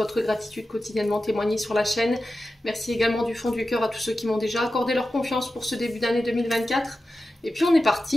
gratitude quotidiennement témoignée sur la chaîne. Merci également du fond du cœur à tous ceux qui m'ont déjà accordé leur confiance pour ce début d'année 2024. Et puis on est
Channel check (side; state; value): both; normal; correlation 0.92